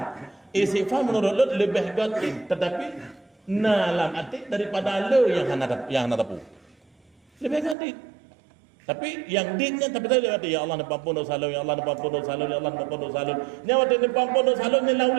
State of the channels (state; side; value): drops out; left; at 7.8 s